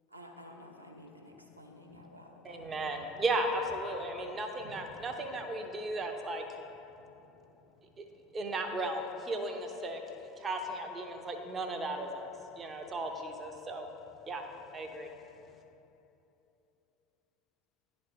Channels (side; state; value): both; normal; correlation 0.50